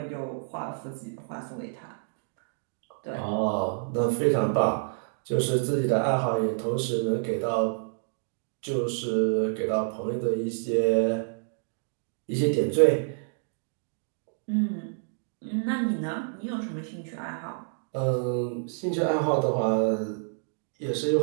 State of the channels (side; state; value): left; silent; digital silence